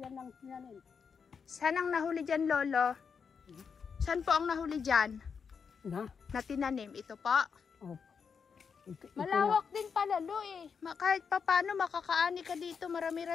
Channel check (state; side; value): quieter; right; 6.1 dB